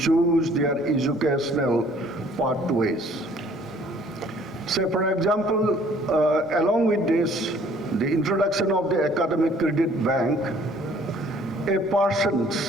their educational pathways. So for example, along with this, the introduction of the Academic Credit Bank, a person,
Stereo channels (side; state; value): both; normal; correlation 0.57